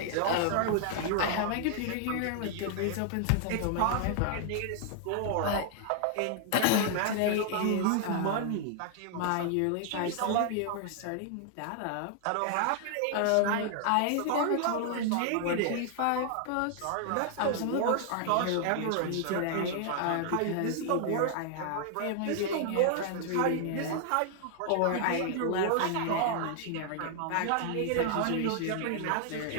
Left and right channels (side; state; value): both; different; correlation 0.00